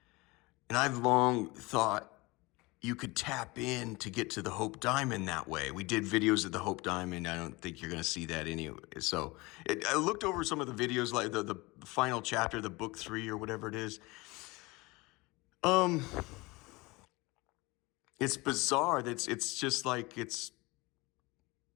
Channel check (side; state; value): right; quieter; 23.6 dB